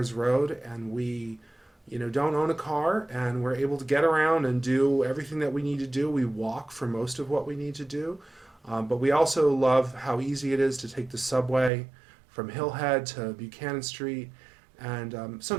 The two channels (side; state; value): left; drops out; at 11.7 s